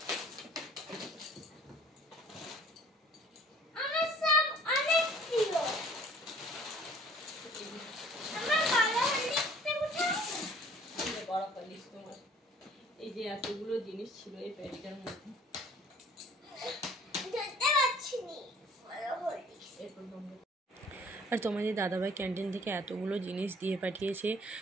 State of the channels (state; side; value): normal; both; correlation 0.53